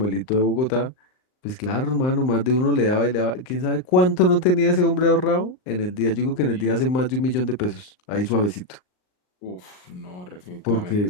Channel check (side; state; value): right; late; 39 ms